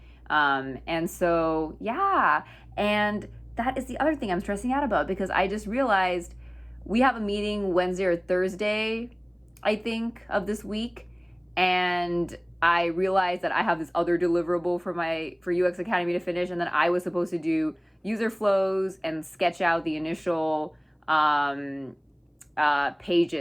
And so yeah, and that is the other thing I'm stressing out about, because I just realized we have a meeting Wednesday or Thursday, I think, of this week. And I realized that I have this other deliverable for UX Academy to finish, and then I was supposed to do user flows and sketch out the initial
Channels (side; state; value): both; identical; correlation 1.00